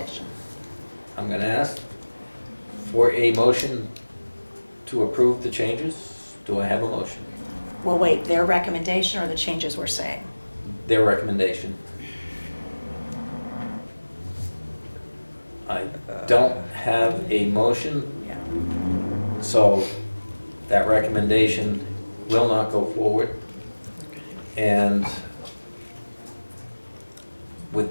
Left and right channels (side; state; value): both; inverted; correlation -1.00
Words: I'm gonna ask for a motion to approve the changes. Do I have a motion? Well, wait, their recommendation or the changes we're saying? Their recommendation. I don't have a motion, Yeah. so that recommendation will not go forward. And